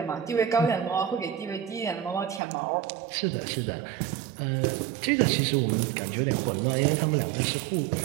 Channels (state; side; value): drops out; left; at 2.4 s